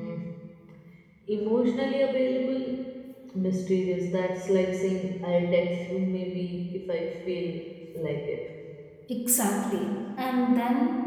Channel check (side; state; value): both; identical; correlation 1.00